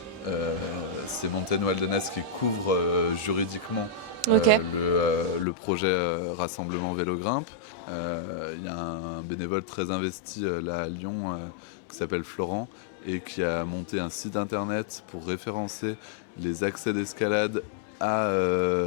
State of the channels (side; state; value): right; drops out; at 5.5 s